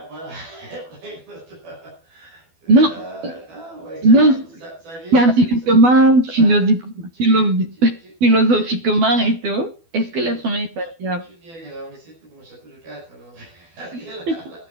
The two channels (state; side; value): late; left; 12 ms